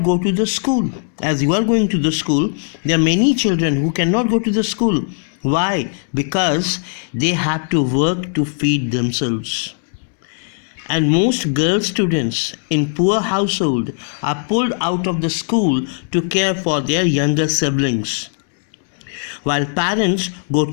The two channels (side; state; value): right; silent; digital silence